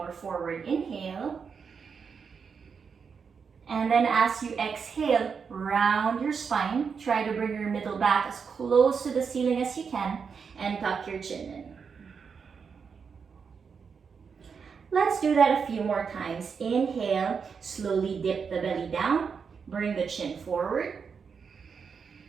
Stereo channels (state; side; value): quieter; left; 6.0 dB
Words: forward, inhale. And then as you exhale, round your spine. Try to bring your middle back as close to the ceiling as you can and tuck your chin in. Let's do that a few more times. Inhale, slowly dip the belly down, bring the chin forward.